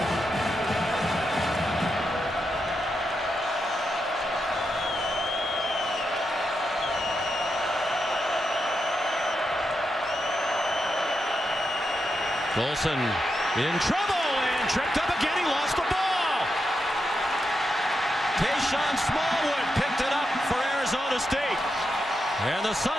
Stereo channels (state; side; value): normal; both; correlation 0.85